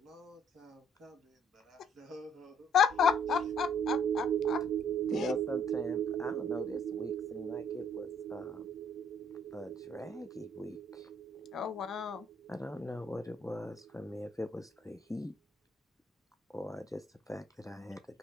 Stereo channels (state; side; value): normal; both; correlation 0.62